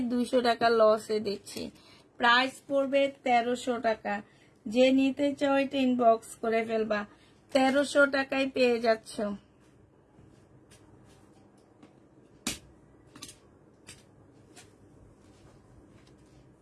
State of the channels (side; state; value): both; identical; correlation 1.00